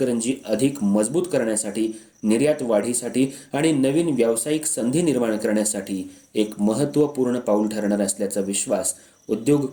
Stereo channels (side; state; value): both; identical; correlation 1.00